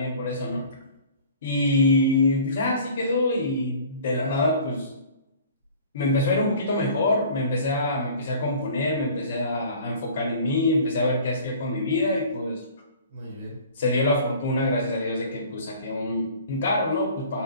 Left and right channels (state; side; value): inverted; both; correlation -0.47